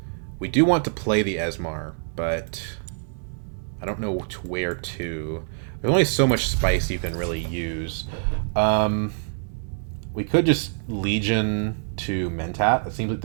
We do want to play the Esmar, but I don't know where to. There's only so much spice you can really use. We could just Legion to Mentat. That seems like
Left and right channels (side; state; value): left; silent; digital silence